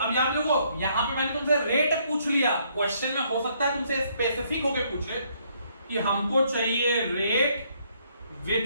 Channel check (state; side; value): inverted; both; correlation -0.69